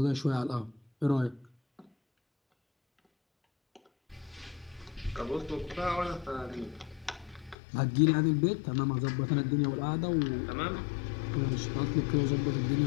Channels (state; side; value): drops out; right; at 7.6 s